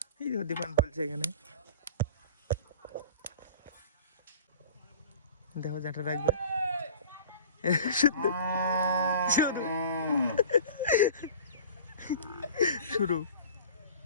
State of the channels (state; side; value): inverted; both; correlation -0.42